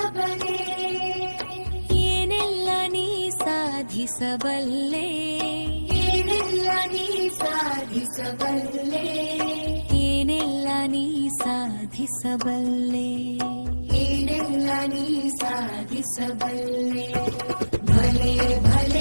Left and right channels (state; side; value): inverted; both; correlation -1.00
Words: ಏನೆಲ್ಲ ನೀ ಸಾಧಿಸಬಲ್ಲೆ, ಏನೆಲ್ಲ ನೀ ಸಾಧಿಸಬಲ್ಲೆ, ಏನೆಲ್ಲ ನೀ ಸಾಧಿಸಬಲ್ಲೆ, ಏನೆಲ್ಲ ನೀ ಸಾಧಿಸಬಲ್ಲೆ. ಭಲೆ